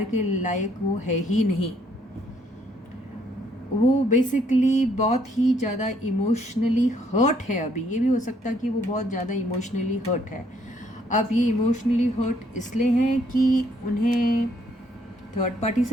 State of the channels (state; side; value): normal; both; correlation 0.68